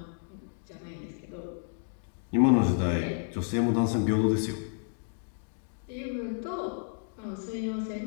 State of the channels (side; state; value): right; silent; digital silence